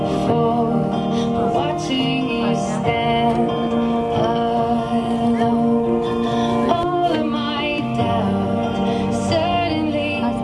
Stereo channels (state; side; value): identical; both; correlation 1.00